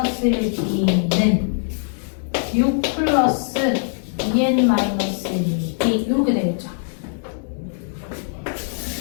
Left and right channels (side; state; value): right; silent; 65 dB below the other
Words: 6 플러스 2n-1d 이렇게 되겠죠.